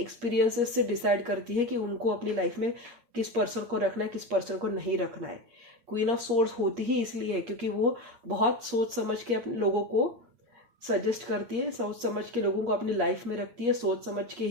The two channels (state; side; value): late; left; 8.5 ms